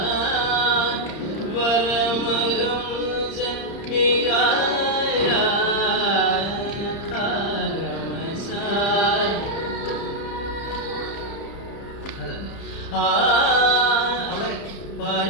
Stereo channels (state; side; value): late; right; 30 ms